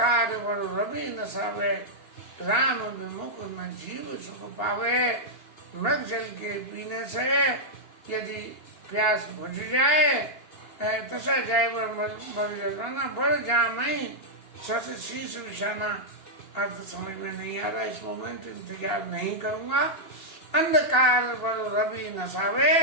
बल रवि न सावे, राम विमुख न जीव सुख पावे। मृग जल के पीने से यदि प्यास बुझ जाए, तसा जाए बल जल पाना, बल जामई शशि शीर्ष विषाना। अर्थ समझ में नहीं आ रहा इस मोमेंट, इंतजार नहीं करूंगा। अंधकार बल रवि नसावे,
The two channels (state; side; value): late; right; 2.9 ms